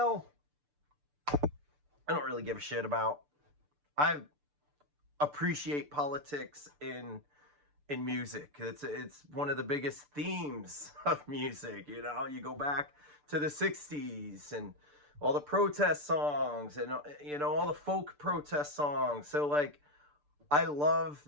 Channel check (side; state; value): left; late; 6.8 ms